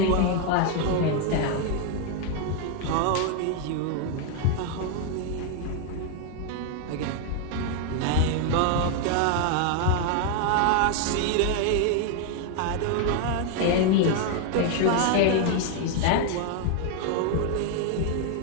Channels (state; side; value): different; both; correlation 0.01